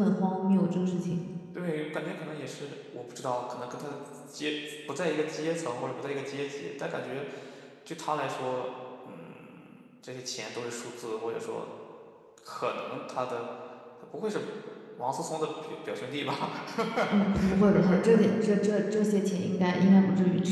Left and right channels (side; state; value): both; identical; correlation 1.00